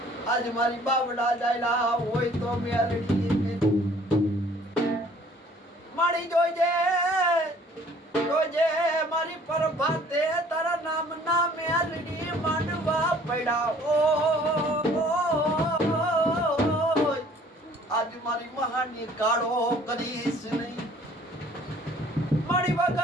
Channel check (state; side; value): normal; both; correlation 0.55